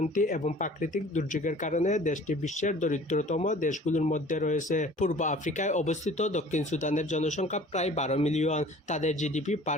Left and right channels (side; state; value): both; normal; correlation 0.48